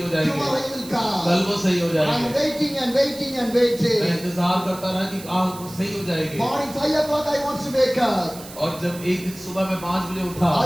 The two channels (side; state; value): right; noise; hiss, 16 dB below the sound